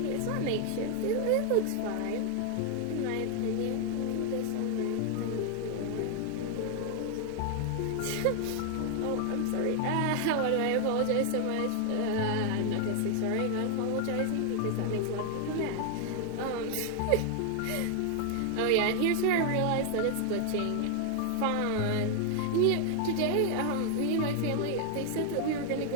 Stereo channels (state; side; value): different; both; correlation 0.00